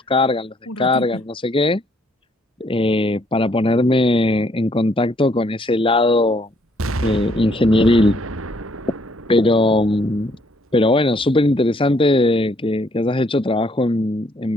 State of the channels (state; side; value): normal; both; correlation 0.67